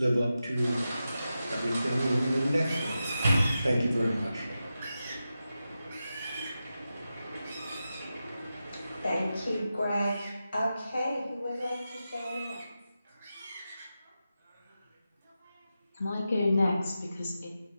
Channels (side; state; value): both; inverted; correlation -0.91